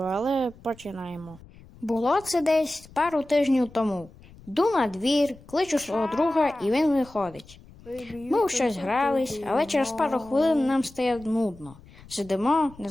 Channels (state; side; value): noise; left; rumble, 22 dB below the sound